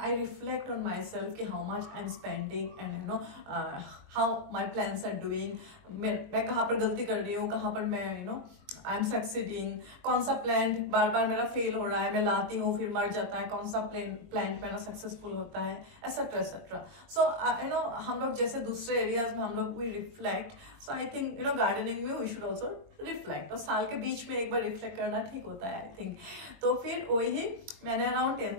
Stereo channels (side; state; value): left; late; 22 ms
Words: reflect on my self कि how much I am spending and you know how my plans are doing, मैं कहाँ पर गलती कर रही हूँ, कहाँ पर मैं you know I am succeeding, कौन सा प्लांट बार बार मेरा फेल हो रहा है, मैं लाती हूँ फिर मर जाता है, कौन सा प्लांट मेरा सक्सेसफुल होता है, etcetera etcetera. So you know हम लोग जैसे दूसरे एरियाज में हम लोग we reflect, so I think you know gardening में वी शुड ऑल्सो रिफ्लेक्ट, तो साल के बीच में एक बार रिफ्लेक्ट करना ठीक होता है आई थिंक। तो फिर वही मैंने अराउंड